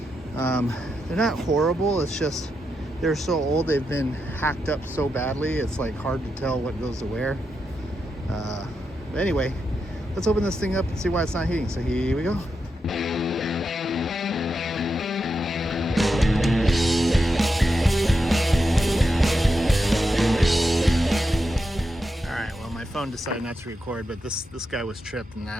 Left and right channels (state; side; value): normal; both; correlation 0.86